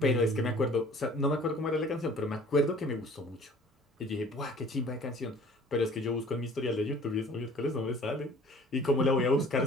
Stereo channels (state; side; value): normal; both; correlation 0.50